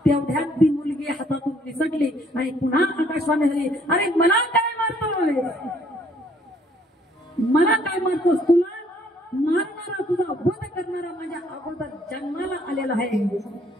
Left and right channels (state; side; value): normal; both; correlation 0.64